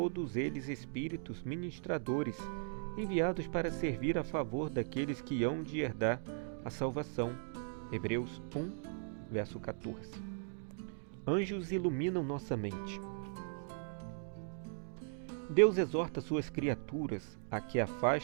eles espíritos ministradores, enviados para servir a favor daqueles que hão de herdar a salvação. Hebreus 1, verso 14. Anjos iluminam nossa mente. Deus exorta suas criaturas a que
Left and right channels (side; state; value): left; silent; digital silence